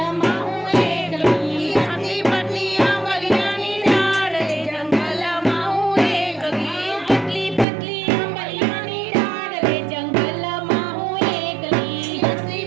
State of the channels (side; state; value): left; drops out; at 7.7 s